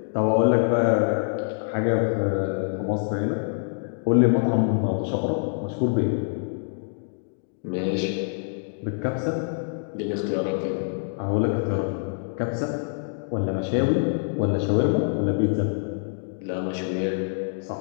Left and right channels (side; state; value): right; silent; digital silence